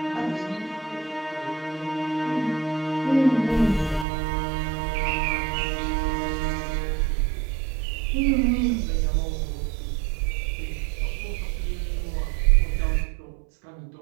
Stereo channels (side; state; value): left; drops out; at 4.0 s